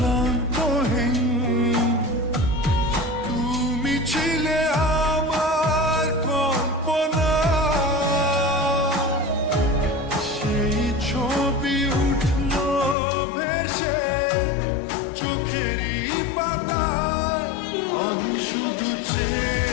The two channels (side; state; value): right; drops out; at 13.0 s